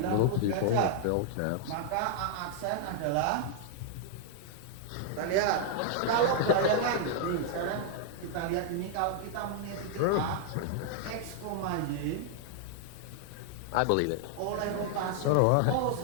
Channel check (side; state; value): both; different; correlation -0.01